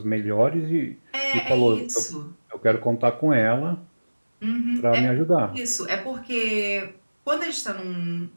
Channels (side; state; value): both; inverted; correlation -1.00